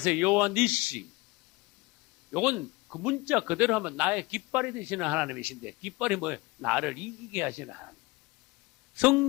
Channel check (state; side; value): quieter; right; 22.8 dB